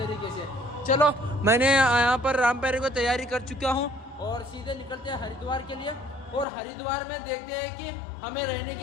से। चलो मैंने यहाँ पर रामप्यारी को तैयारी कर चुका हूँ और सीधे निकलते हैं हरिद्वार के लिए। और हरिद्वार में देखते हैं कि हमें रहने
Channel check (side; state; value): right; drops out; at 6.5 s